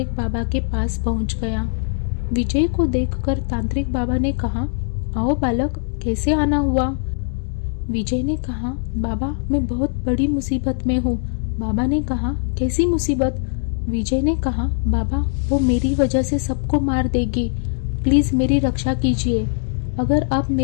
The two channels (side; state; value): right; silent; digital silence